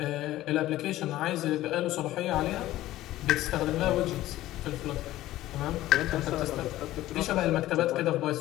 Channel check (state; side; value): quieter; right; 15.3 dB